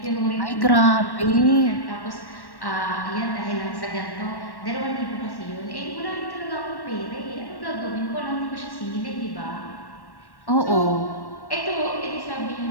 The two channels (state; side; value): late; right; 1.1 ms